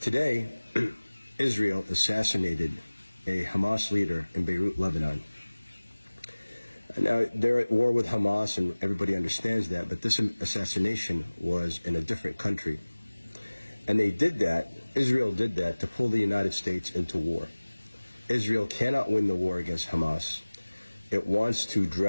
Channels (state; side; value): inverted; both; correlation -1.00